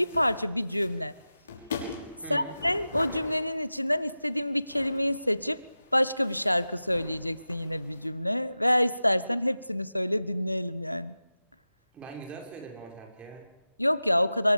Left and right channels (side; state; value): both; inverted; correlation -0.95